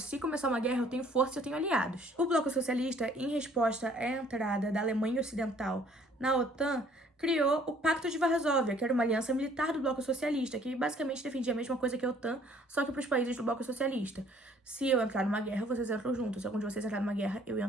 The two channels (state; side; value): normal; both; correlation 0.59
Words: começar uma guerra, eu tenho força e eu tenho aliados. O Bloco Socialista, em resposta à entrada da Alemanha Ocidental na OTAN, criou o Pacto de Varsóvia, que era uma aliança militar do Bloco Socialista, que basicamente defendia a mesma coisa que a OTAN, só que para os países do Bloco Socialista. Se eu entrar numa guerra, vocês entram junto. Se algum de vocês entrar numa guerra, eu